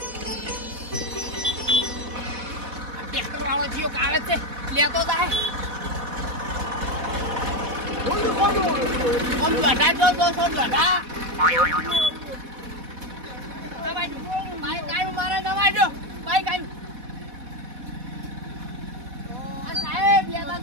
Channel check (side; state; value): left; late; 4.1 ms